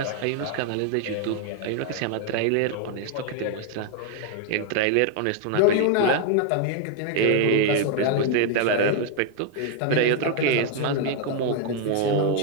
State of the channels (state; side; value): different; both; correlation 0.00